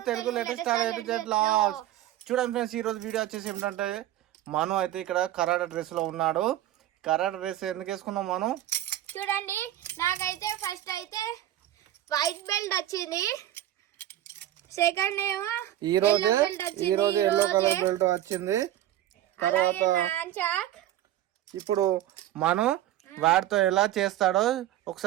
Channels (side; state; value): left; quieter; 13.2 dB